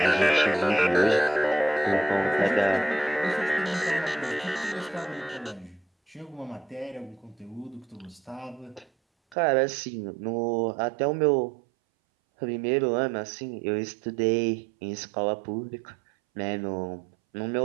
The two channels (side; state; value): left; drops out; at 9.3 s